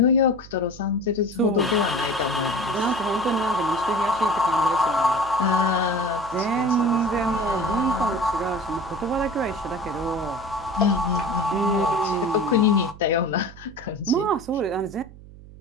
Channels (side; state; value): right; noise; hum, 19 dB below the sound